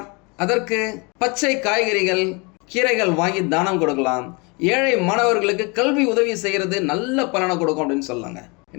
அதற்கு பச்சை காய்கறிகள் கீரைகள் வாங்கி தானம் கொடுக்கலாம். ஏழை மாணவர்களுக்கு கல்வி உதவி செய்கிறது நல்ல பலனை கொடுக்கும் அப்படின்னு சொல்லாங்க.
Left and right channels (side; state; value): right; quieter; 29.8 dB